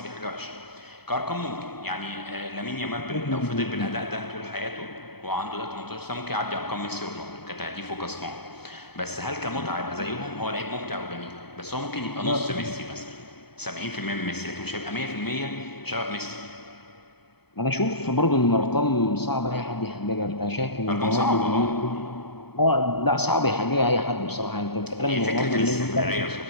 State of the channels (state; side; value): late; right; 0.97 ms